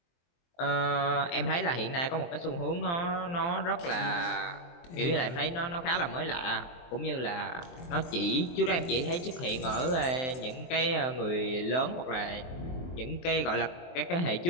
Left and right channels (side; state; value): right; late; 23 ms